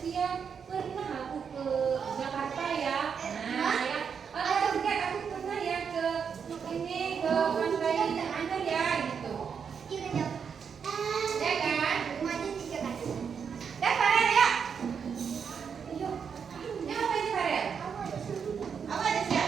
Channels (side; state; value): left; quieter; 6.7 dB